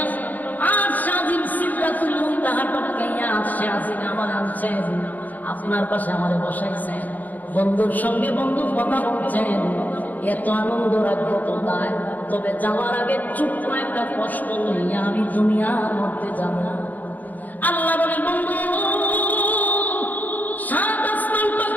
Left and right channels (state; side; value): late; right; 0.082 ms